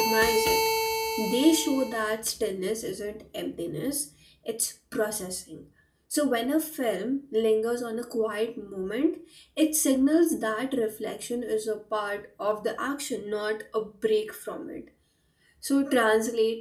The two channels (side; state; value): both; identical; correlation 1.00